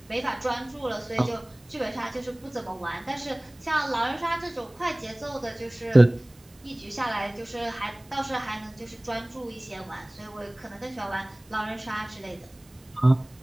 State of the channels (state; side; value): noise; right; hiss, 28 dB below the sound